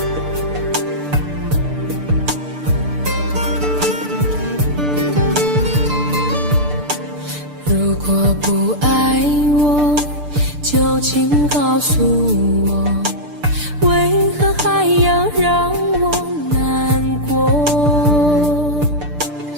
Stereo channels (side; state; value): left; late; 6.8 ms